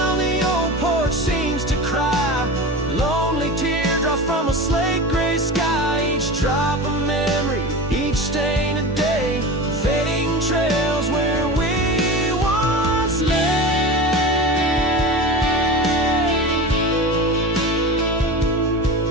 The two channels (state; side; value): normal; both; correlation 0.29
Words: the old porch seems to cry, lonely teardrops from a slate gray sky. Each drop a memory, each stain a day, fading trails where we once lay.